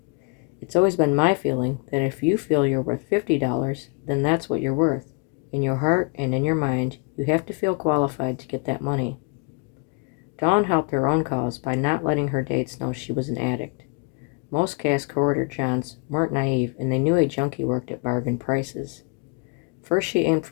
"It's always been my feeling that if you feel you're worth $50, then that's what you're worth. In your heart and in your mind, you have to feel qualified to get that money." Dawn helped her own cause by not letting her dates know she was an addict. Most Cass Corridor Johns weren't naive, and they knew a junkie worked at bargain prices. First she aimed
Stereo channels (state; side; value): quieter; right; 32.3 dB